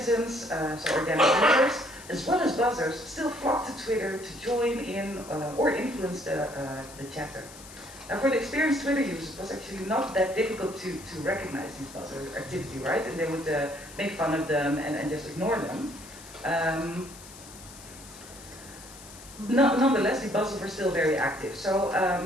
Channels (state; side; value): noise; left; hiss, 17 dB below the sound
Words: so organic users, as well as buzzers, still flocked to Twitter to join in or influence the chatter. Now for the experienced Twitter users, it was actually not that difficult to recognize these buzzer activity, right? And they would make fun of them and just ignore them. Nonetheless, the buzzers were still very active. So